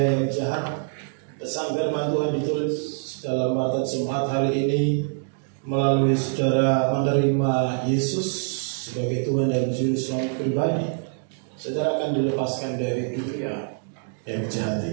jahat. Pesan firman Tuhan ditulis dalam pada Jumat hari ini melalui saudara menerima Yesus sebagai Tuhan dan Juru Selamat pribadi. Saudara akan dilepaskan dari dunia yang jahat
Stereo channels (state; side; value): silent; left; digital silence